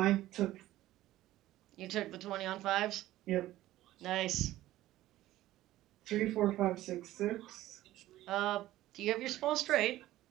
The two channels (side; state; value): left; quieter; 15.2 dB